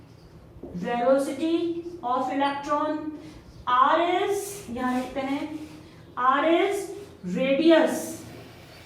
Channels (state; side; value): identical; both; correlation 1.00